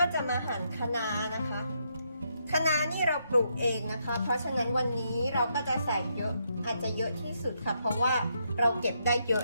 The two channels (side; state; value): both; inverted; correlation -0.78